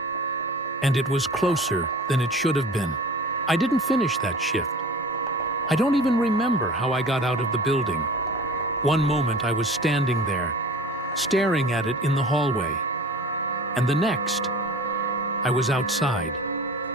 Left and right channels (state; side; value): normal; both; correlation 0.40